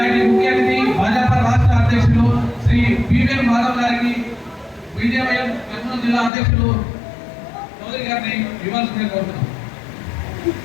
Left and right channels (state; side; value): drops out; right; at 6.3 s